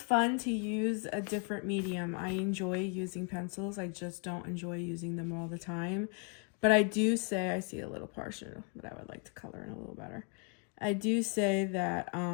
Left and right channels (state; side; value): quieter; right; 36.9 dB